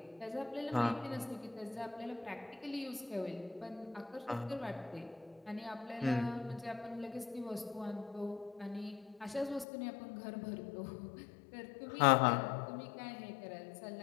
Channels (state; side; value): drops out; right; at 9.7 s